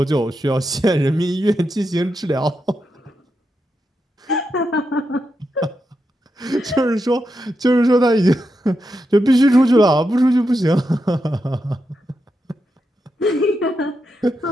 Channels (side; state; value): both; normal; correlation 0.86